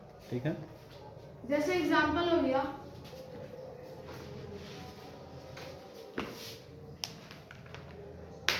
ठीक है, जैसे एग्जांपल हो गया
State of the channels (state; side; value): identical; both; correlation 1.00